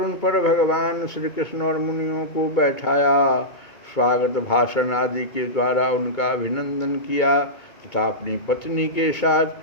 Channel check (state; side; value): late; right; 2.2 ms